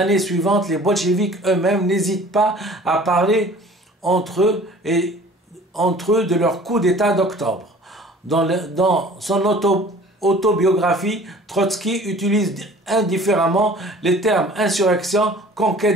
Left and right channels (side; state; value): both; normal; correlation 0.48